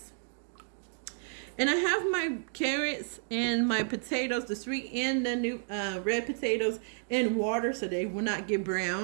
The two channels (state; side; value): silent; left; 57 dB below the other